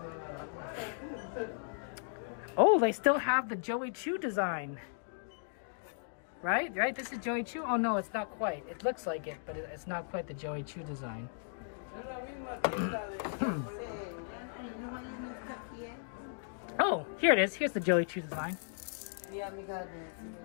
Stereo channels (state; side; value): silent; right; digital silence